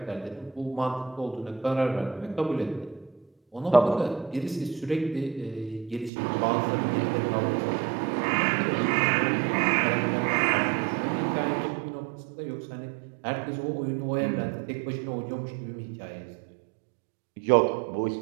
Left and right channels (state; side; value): drops out; left; at 6.1 s